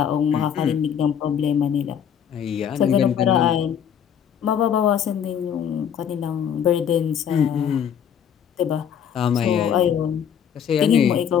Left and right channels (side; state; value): right; quieter; 8.5 dB